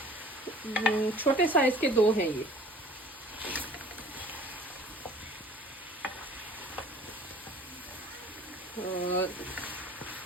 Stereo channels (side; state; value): both; normal; correlation 0.49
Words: छोटे साइज के 2 हैं ये। और